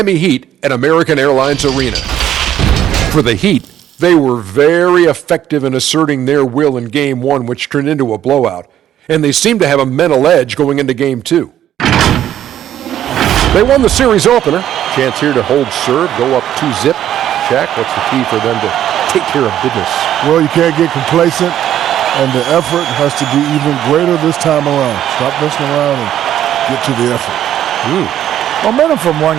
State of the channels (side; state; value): left; quieter; 11.3 dB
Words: Heat at American Airlines Arena. For the Heat, they were very effective in asserting their will in Game 1, which turned into a blowout. And they seem to have a mental edge going into Game 2. They won the series opener. Chance here to hold serve, go up 2-zip. Shaq, what's the key for them to take care of business? Well, you can't get complacent, and the effort has to be even greater this time around. Stop messing around and get to the effort. Momentum from one